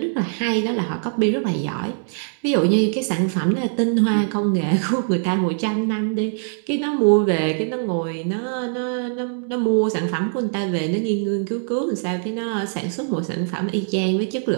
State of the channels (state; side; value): silent; left; 63 dB below the other